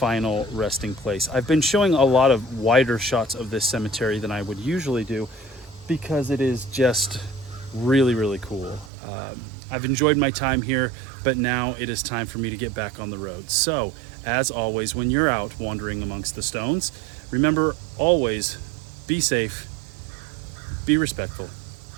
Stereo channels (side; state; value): left; drops out; at 8.9 s